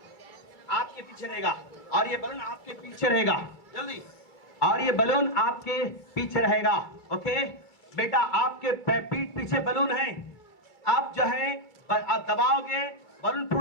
आपके पीछे रहेगा, और ये बलून आपके पीछे रहेगा, जल्दी। और ये बलून आपके पीछे रहेगा, ओके बेटा। आपके पीठ पीछे बलून है, आप जो है दबाओगे बलून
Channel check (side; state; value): right; late; 2.4 ms